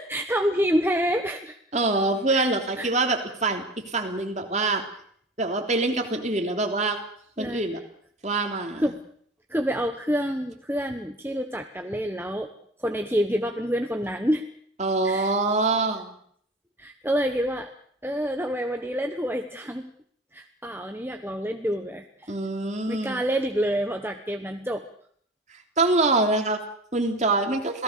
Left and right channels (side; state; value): both; normal; correlation 0.40